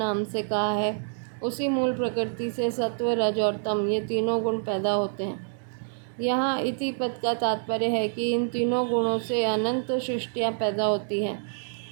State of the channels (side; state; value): left; silent; digital silence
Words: से कहा है, उसी मूल प्रकृति से सत्व रज और तम ये तीनों गुण पैदा होते हैं। यहाँ इति पद का तात्पर्य है कि इन तीनों गुणों से अनंत सृष्टियाँ पैदा होती हैं